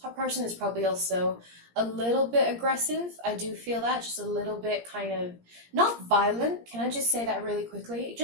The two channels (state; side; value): late; left; 17 ms